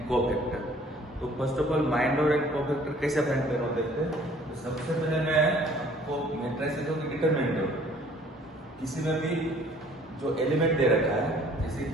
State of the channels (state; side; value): normal; both; correlation 0.55